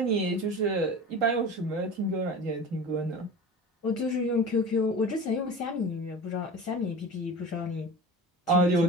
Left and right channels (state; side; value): normal; both; correlation 0.34